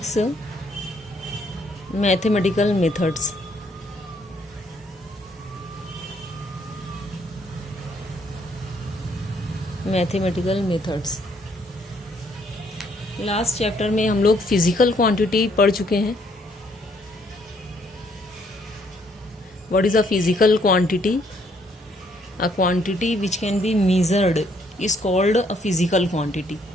mathematical methods. Mathematical methods. Last chapter में हम लोग फिजिकल क्वांटिटी पढ़ चुके हैं। What is a physical quantity? A quantity which can be measured is called a physical quantity.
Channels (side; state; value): both; normal; correlation 0.68